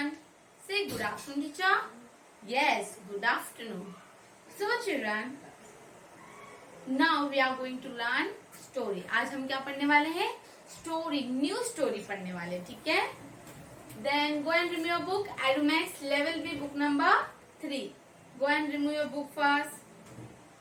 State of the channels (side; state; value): both; identical; correlation 1.00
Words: Say good afternoon teacher. Yes, good afternoon. So children, now we are going to learn story. आज हम क्या पढ़ने वाले हैं? Story, new story पढ़ने वाले, ठीक है? Then go and remove your book. Adumax level B book number 3. Go and remove your book first.